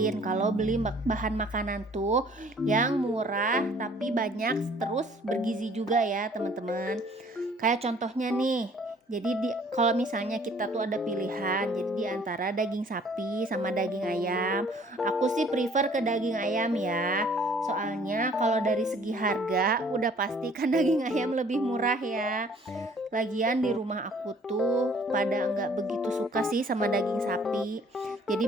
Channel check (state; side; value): normal; both; correlation 0.57